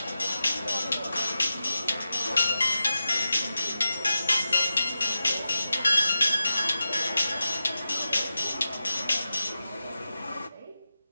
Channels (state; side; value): inverted; both; correlation -0.90